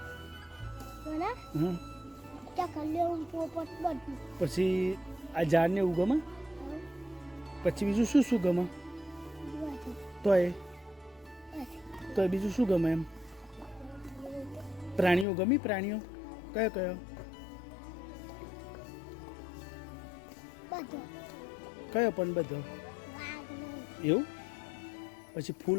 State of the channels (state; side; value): drops out; right; at 15.2 s